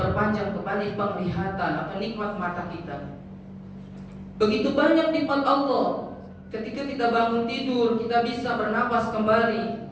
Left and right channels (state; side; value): identical; both; correlation 1.00